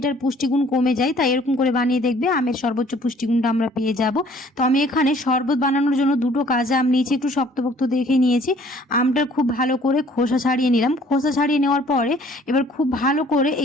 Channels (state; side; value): normal; both; correlation 0.56